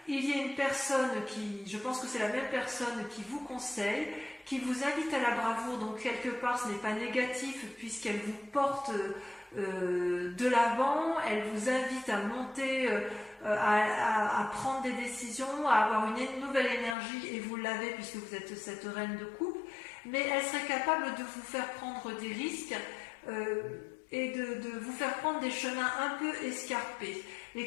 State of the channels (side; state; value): right; drops out; at 16.9 s